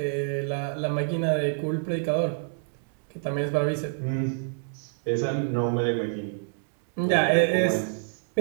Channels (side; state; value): left; silent; digital silence